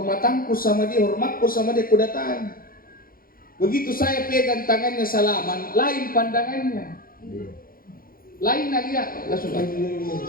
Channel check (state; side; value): late; right; 0.42 ms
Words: sama dia, hormatku sama dia, aku datangi. Begitu saya pegang tangannya salaman, lain pandangannya. Lain dia langsung